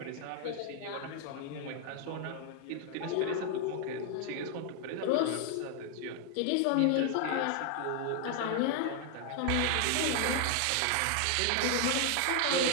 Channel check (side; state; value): both; different; correlation 0.00